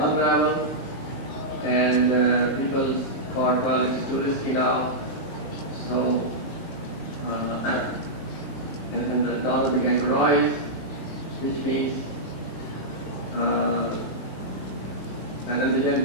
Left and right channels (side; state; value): right; late; 19 ms